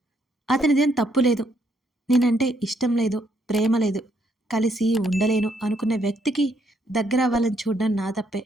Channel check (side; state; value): both; normal; correlation 0.72